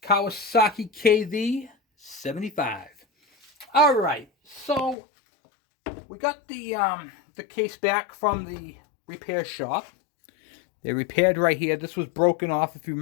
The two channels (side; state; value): right; drops out; at 5.0 s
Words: Kawasaki kv75. Alright, so we got the case back from the repair shop. They repaired right here. This was broken off, if you